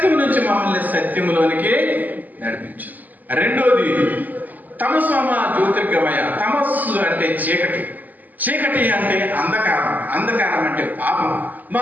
నుంచి మమ్మల్ని సత్యంలోనికి నడిపించు. రెండోది తమసోమ జ్యోతిర్గమయ. తమస్సు అంటే చీకటి అంటే అంధకారం అంటే పాపం.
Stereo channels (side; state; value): left; late; 0.082 ms